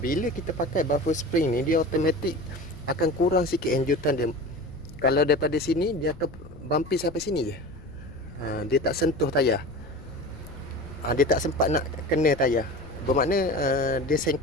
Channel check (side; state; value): left; noise; rumble, 18 dB below the sound